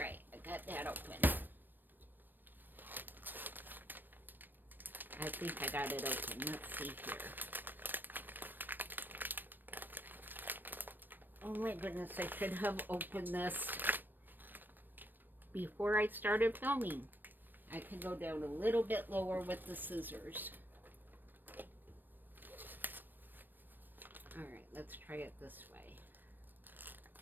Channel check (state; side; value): late; left; 0.092 ms